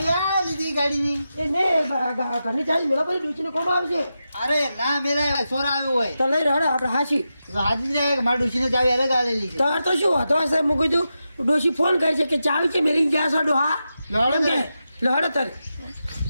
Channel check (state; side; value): inverted; both; correlation -0.89